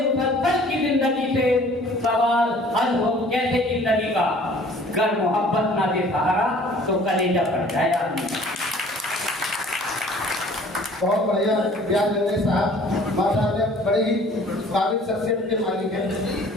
की जिंदगी से सवाल हल हो कैसे जिंदगी का। अगर मोहब्बत ना दे सहारा तो कलेजा फट जाए आदमी। बहुत बढ़िया रियाज रंगरेज साहब माशाअल्लाह बड़ी ही काबिल शख्सियत के मालिक हैं।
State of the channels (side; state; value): both; normal; correlation 0.52